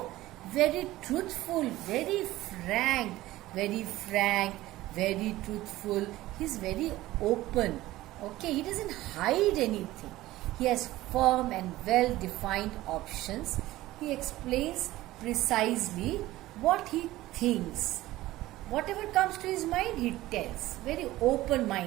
very truthful, very frank, very truthful. He's very open. Okay, he doesn't hide anything. He has firm and well defined options. He explains precisely what he thinks. Whatever comes to his mind, he tells. Very open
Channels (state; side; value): quieter; left; 16.7 dB